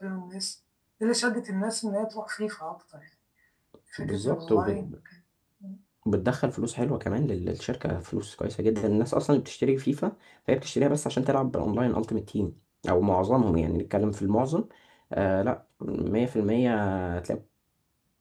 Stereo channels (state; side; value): identical; both; correlation 1.00